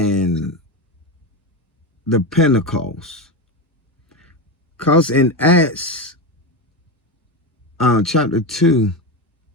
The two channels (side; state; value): both; normal; correlation 0.17